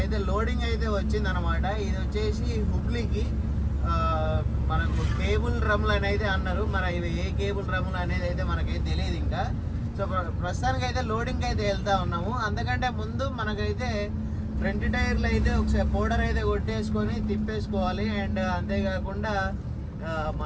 లోడింగ్ అయితే వచ్చింది అనమాట. ఇది వచ్చేసి హుబ్లీకి మనకు కేబుల్ డ్రమ్లు అనేది అన్నారు. మరి ఇవి ఏ కేబుల్ డ్రమ్లు అనేది అయితే మనకైతే తెలియదు ఇంకా. సో ప్రస్తుతానికి అయితే లోడింగ్కి అయితే వెళ్తా ఉన్నాము. అందుకంటే ముందు మనకైతే ఫ్రంట్ టైర్లు అయితే ఒకసారి పౌడర్ అయితే కొట్టేసుకొని తిప్పేసుకోవాలి. అండ్ అంతేకాకుండా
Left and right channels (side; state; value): both; identical; correlation 1.00